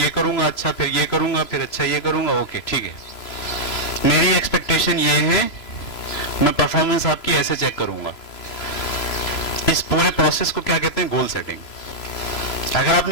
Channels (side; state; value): right; late; 3.0 ms